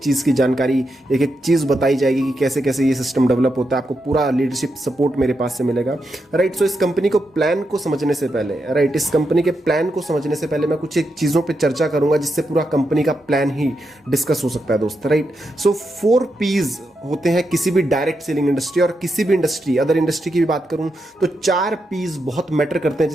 की जानकारी, एक एक चीज़ बताई जाएगी कि कैसे कैसे ये सिस्टम डेवलप होता है। आपको पूरा लीडरशिप सपोर्ट मेरे पास से मिलेगा, राइट। सो इस कंपनी को प्लान को समझने से पहले, राइट, इस कंपनी के प्लान को समझने से पहले मैं कुछ एक चीज़ों पर चर्चा करूंगा जिससे पूरा कंपनी का प्लान ही डिस्कस हो सकता है दोस्त, राइट। सो 4 P's होते हैं किसी भी डायरेक्ट सेलिंग इंडस्ट्री, और किसी भी इंडस्ट्री, अदर इंडस्ट्री की भी बात करूं तो 4 P's बहुत मैटर करते हैं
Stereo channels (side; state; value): both; normal; correlation 0.85